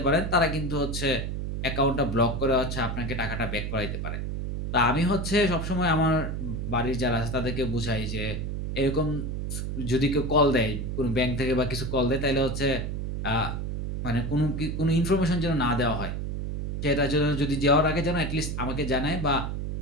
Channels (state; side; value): noise; right; hum, 3 dB below the sound